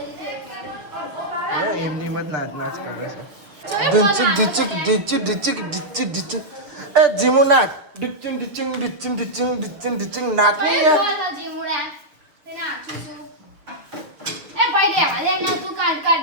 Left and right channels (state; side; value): late; left; 6.6 ms